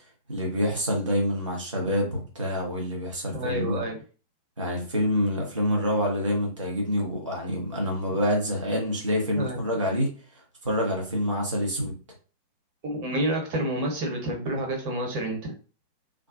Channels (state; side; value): inverted; both; correlation -0.51